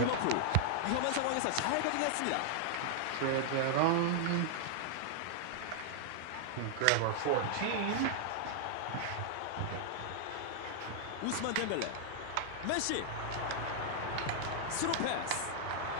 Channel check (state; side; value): different; both; correlation -0.01